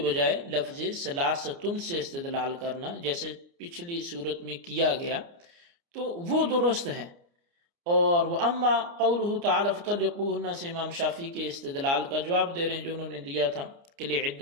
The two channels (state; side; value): late; left; 29 ms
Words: لفظ ثلاثۃ سے استدلال کرنا جیسے پچھلی صورت میں کیا گیا تو وہ درست ہے۔ اور وَأَمَّا قَوْلُهُ تَعَالَى فَطَلِّقُوهُنَّ سے امام شافعی کے استدلال کا جواب دے رہے ہیں جو انہوں نے دیا تھا کہ